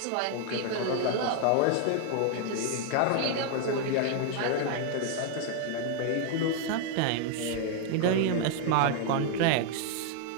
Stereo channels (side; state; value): both; different; correlation 0.00